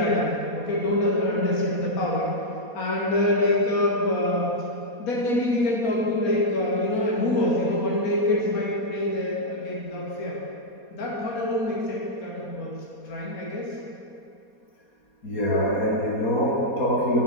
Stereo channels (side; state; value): right; late; 4.2 ms